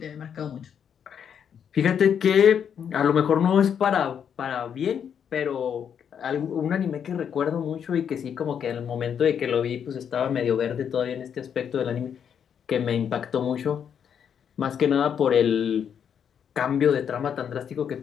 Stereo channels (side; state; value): right; quieter; 8.0 dB